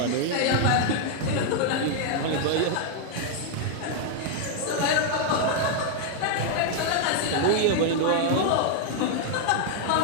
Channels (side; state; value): both; different; correlation 0.00